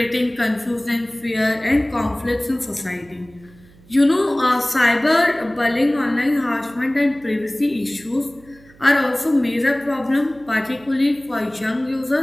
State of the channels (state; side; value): noise; right; hum, 26 dB below the sound